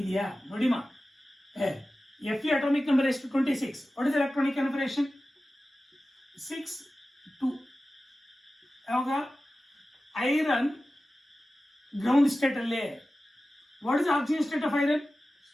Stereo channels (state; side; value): normal; both; correlation 0.95